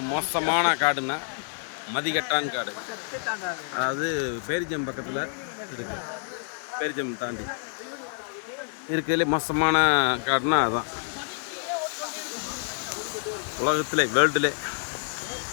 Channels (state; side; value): silent; right; 60 dB below the other